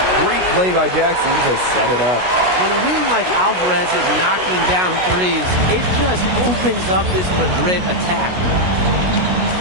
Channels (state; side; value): late; left; 16 ms